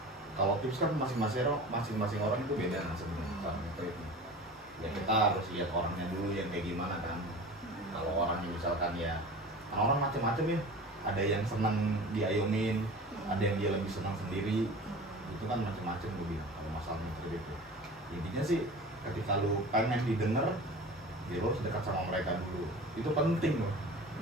Kalau tips kan masing-masing orang itu beda kan sebenarnya cara nge-treat. Ya kita harus lihat orangnya dulu yang kayak gimana kan. Kalau orangnya misalkan ya orang macam-macam ya, ada yang senang diayomin, ada yang dia lebih senang sendiri, itu kan macam-macam gue bilang kalau masalah nge-treat itu. Intinya sih ketika lu pengen didengar, ya lu harus dekat sama mereka dulu, itu penting loh.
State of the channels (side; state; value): both; normal; correlation 0.37